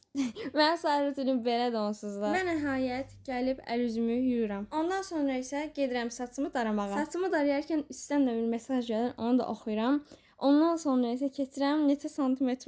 Mən səhər rutinim belədir onsuz da. Və nəhayət gəlib əl-üzümü yuyuram. Ondan sonra isə gedirəm saçımı daramağa. Saçımı darayarkən üstdən də bir mesaj gəlir, onu da oxuyuram. Ondan sonra isə keçirəm neçə santimetr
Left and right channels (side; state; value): both; identical; correlation 1.00